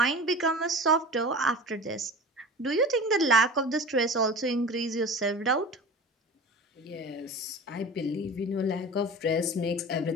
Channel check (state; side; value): normal; both; correlation 0.35